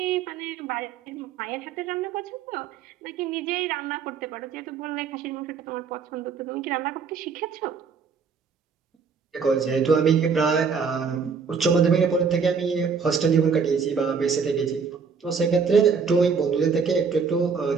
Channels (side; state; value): left; quieter; 5.7 dB